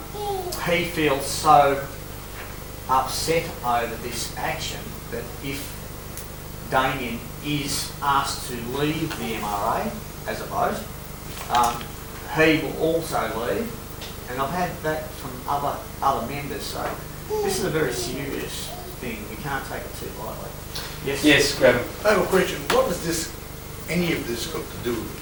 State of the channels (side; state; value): both; identical; correlation 1.00